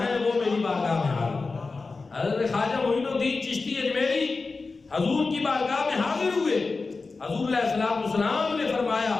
ہے، وہ میری بارگاہ میں حاضر۔ حضرت خواجہ معین الدین چشتی اجمیری حضور کی بارگاہ میں حاضر ہوئے۔ حضور علیہ السلام نے فرمایا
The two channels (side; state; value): right; quieter; 4.0 dB